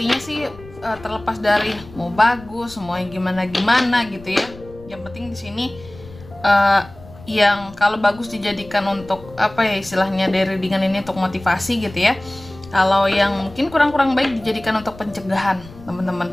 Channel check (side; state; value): left; noise; rumble, 19 dB below the sound